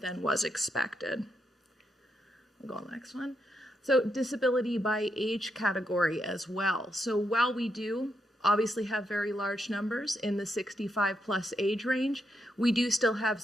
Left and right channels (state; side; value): normal; both; correlation 0.82